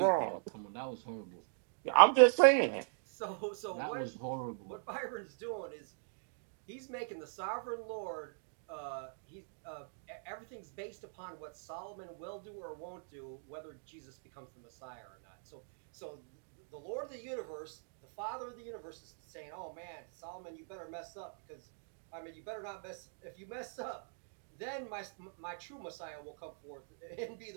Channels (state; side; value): silent; left; digital silence